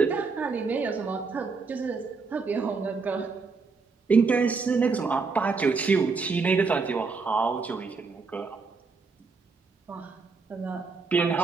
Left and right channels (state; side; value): quieter; left; 4.6 dB